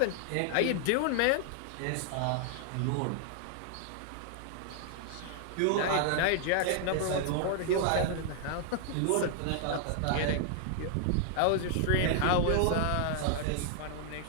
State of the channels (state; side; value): different; both; correlation -0.01